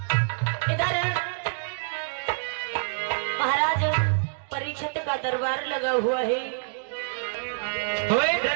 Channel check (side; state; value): left; silent; digital silence